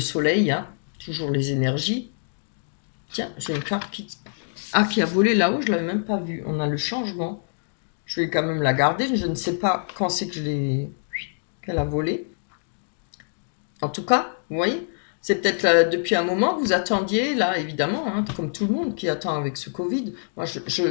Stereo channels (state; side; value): silent; right; digital silence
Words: hein, toujours les énergies. Tiens, j'ai une carte qui a volé là-haut, je ne l'avais même pas vue. On a le changement. Je vais quand même la garder. Je ne sais pas quand c'est que qu'elle a volé. En tout cas, vous voyez, c'est peut-être depuis un moment que vous attendiez, là, évidemment, hein, comme tout le monde qui attend avec ce Covid. Moi,